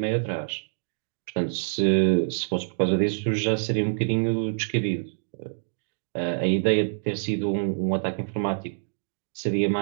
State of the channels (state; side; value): silent; left; digital silence